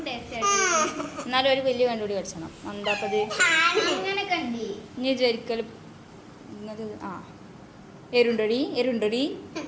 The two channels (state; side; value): identical; both; correlation 1.00